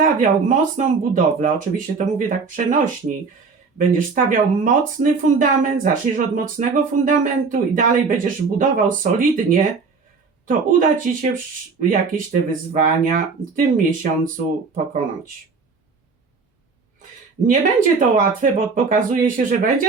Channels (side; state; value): left; quieter; 4.8 dB